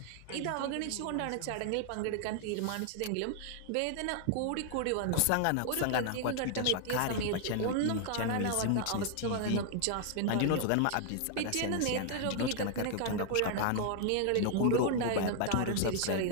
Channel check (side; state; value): both; different; correlation 0.00